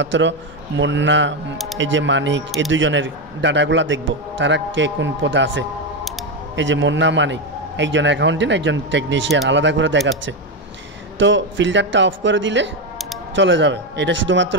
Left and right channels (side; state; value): both; normal; correlation 0.10